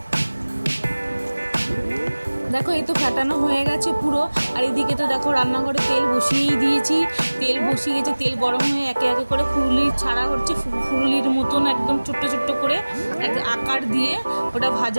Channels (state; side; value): inverted; both; correlation -1.00